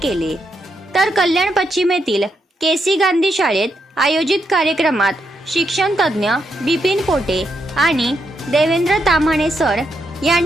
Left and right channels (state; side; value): normal; both; correlation 0.81